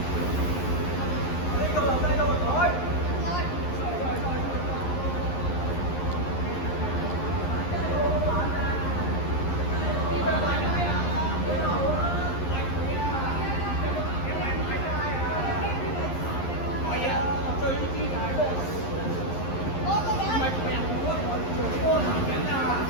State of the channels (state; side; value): late; right; 11 ms